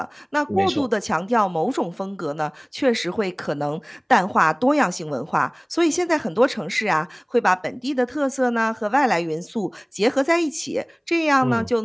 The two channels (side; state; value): both; identical; correlation 1.00